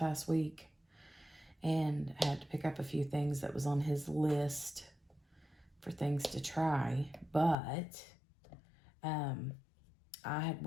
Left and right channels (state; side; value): drops out; right; at 7.6 s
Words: week and had to pick up a few things that was on his list for things to try. But I had